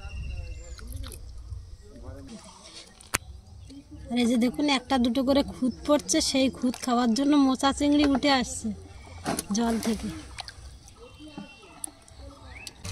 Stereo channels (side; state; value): both; identical; correlation 1.00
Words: আর এই যে দেখুন একটা দুটো করে খুদ পড়ছে, সেই খুদ খাওয়ার জন্য মোচা চিংড়ি উঠে আসছে জল থেকে।